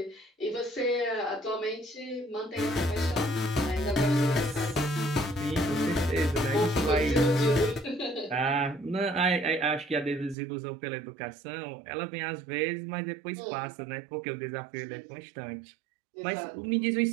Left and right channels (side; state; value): left; drops out; at 10.4 s